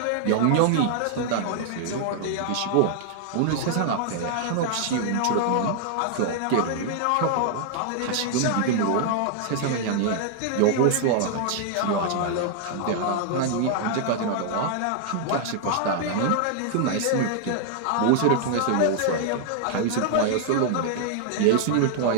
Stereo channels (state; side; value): different; both; correlation 0.00